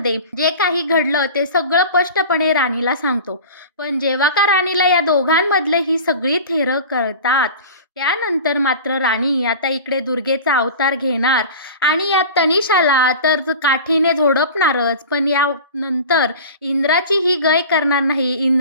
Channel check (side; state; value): both; inverted; correlation -0.36